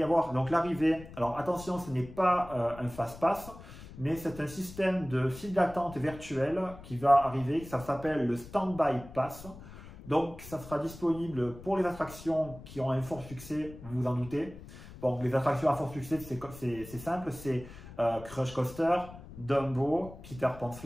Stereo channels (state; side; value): noise; left; rumble, 16 dB below the sound